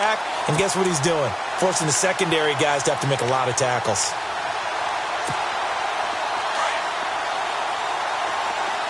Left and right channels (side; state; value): both; identical; correlation 1.00